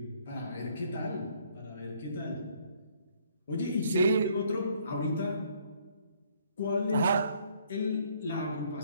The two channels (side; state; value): both; inverted; correlation -0.64